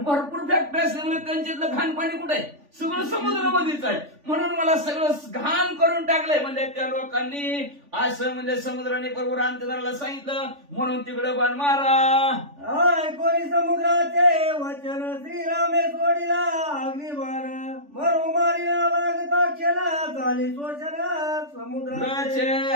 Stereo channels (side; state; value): left; late; 3.4 ms